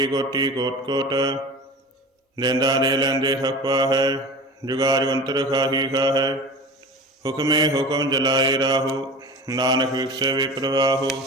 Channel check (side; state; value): both; normal; correlation 0.34